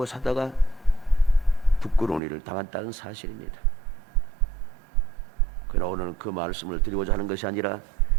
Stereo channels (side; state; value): left; drops out; at 2.2 s